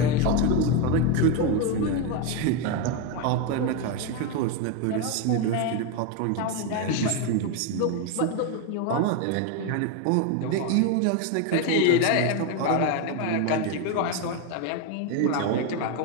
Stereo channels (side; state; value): both; different; correlation 0.02